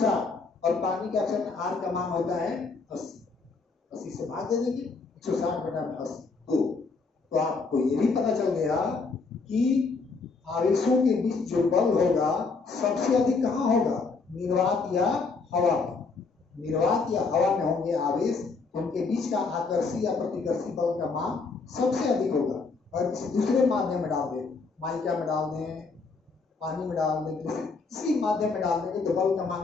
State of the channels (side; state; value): right; quieter; 4.4 dB